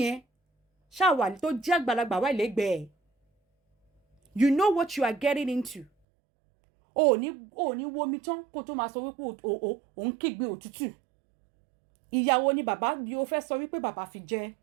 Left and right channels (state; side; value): drops out; left; at 5.9 s